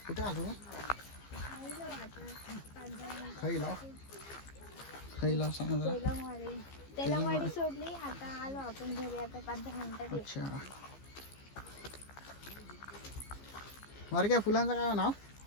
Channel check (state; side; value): late; right; 15 ms